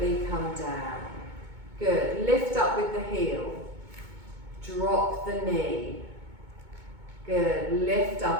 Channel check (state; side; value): late; left; 2.2 ms